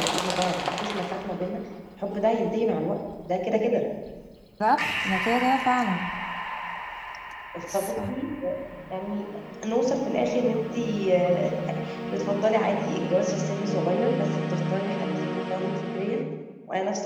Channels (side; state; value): both; identical; correlation 1.00